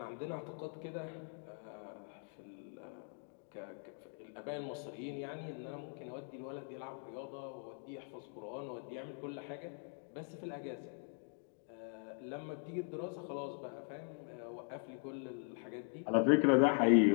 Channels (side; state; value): right; silent; 50 dB below the other